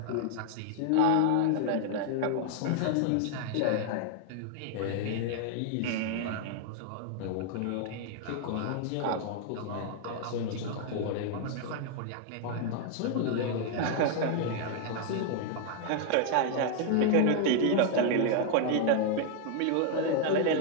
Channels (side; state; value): both; different; correlation 0.00